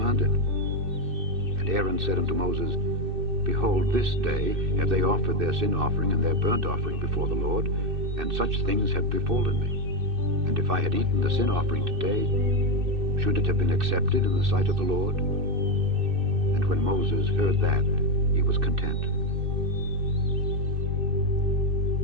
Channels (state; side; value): late; left; 2.6 ms